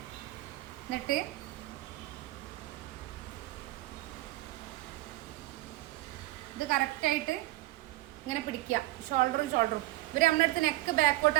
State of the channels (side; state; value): left; quieter; 18.4 dB